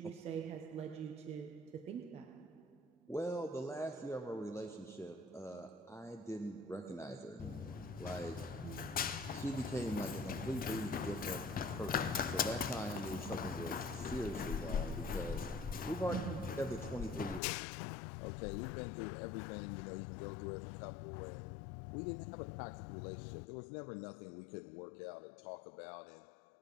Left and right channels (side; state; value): right; drops out; at 17.4 s